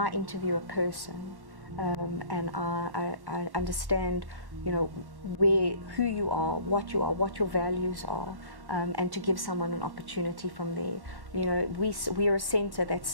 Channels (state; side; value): late; left; 1.1 ms